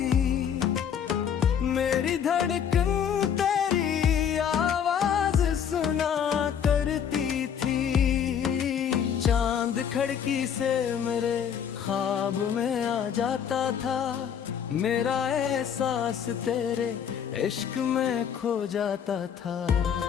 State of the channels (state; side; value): quieter; right; 8.1 dB